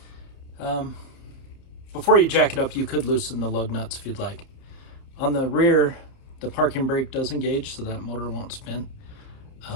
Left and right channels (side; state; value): right; late; 30 ms